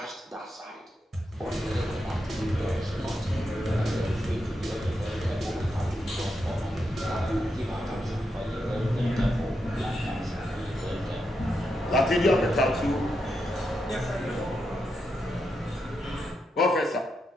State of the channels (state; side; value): normal; both; correlation 0.84